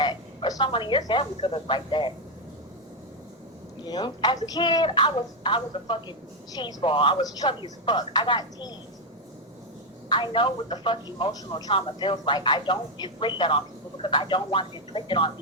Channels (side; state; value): both; normal; correlation 0.03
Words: Or someone in your family could look like that. Yeah. As a kid, I was a fucking cheese ball. I was chubby as fuck. I got teased. I know what the fuck emotional trauma feels like. I don't inflict that on people because I don't want it inflicted on